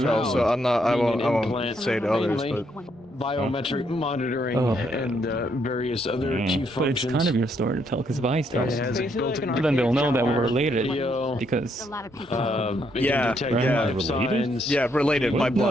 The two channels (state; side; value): normal; both; correlation 0.74